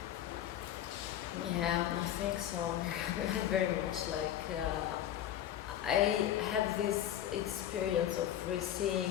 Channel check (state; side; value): quieter; right; 11.2 dB